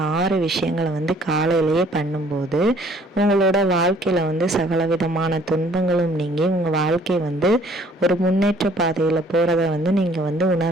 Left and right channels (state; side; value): normal; both; correlation 0.58